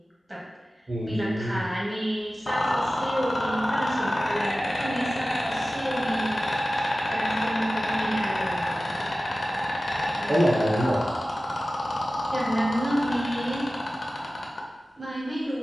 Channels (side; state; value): both; normal; correlation 0.96